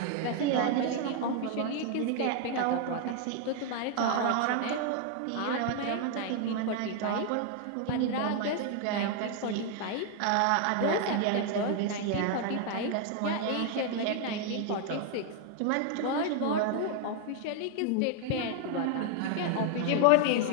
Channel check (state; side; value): different; both; correlation 0.00